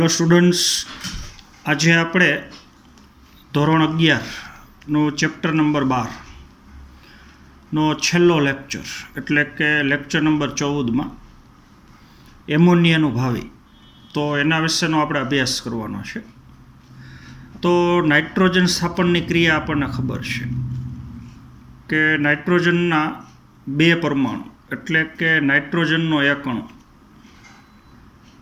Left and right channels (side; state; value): both; identical; correlation 1.00